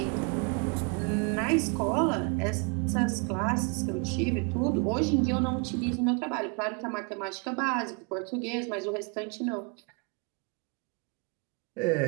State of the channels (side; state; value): left; quieter; 33.6 dB